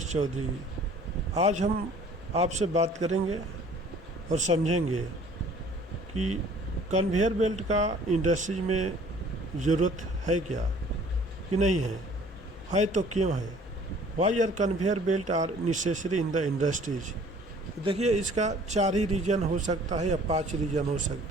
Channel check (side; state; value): both; normal; correlation 0.53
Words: चौधरी। आज हम आपसे बात करेंगे और समझेंगे कि कन्वेयर बेल्ट का इंडस्ट्रीज में ज़रूरत है क्या कि नहीं है तो क्यों है। Why are conveyor belt are necessary in the industries. देखिए, इसका 4 ही रीज़न हो सकता है या 5 रीज़न हो